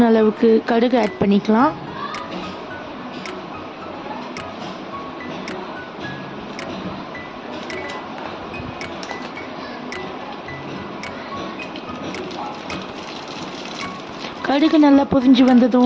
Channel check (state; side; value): identical; both; correlation 1.00